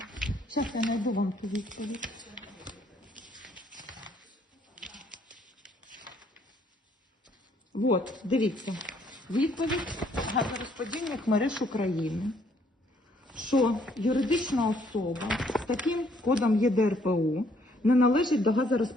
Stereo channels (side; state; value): both; normal; correlation 0.66